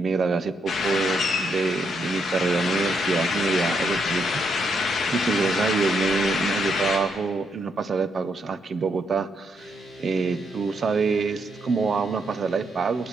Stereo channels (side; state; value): both; normal; correlation 0.77